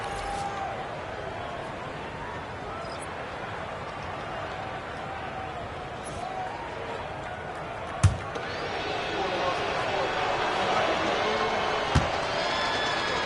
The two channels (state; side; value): identical; both; correlation 1.00